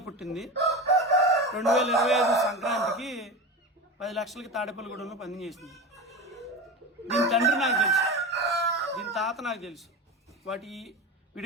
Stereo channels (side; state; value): both; normal; correlation 0.25